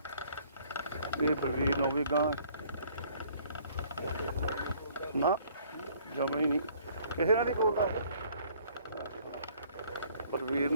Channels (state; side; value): inverted; both; correlation -0.59